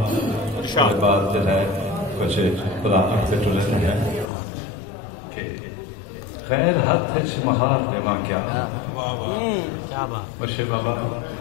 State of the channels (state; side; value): drops out; right; at 4.3 s